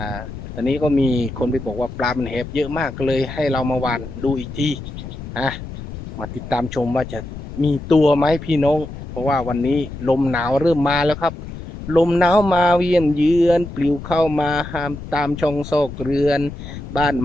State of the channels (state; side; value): noise; left; rumble, 11 dB below the sound